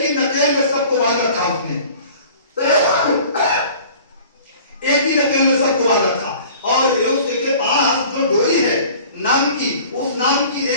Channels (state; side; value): inverted; both; correlation -0.47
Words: ही नकेल में सबको बांध रखा उसने, एक ही नकेल में सबको बांध रखा। और उसके पास जो डोरी है नाम की, उस नाम की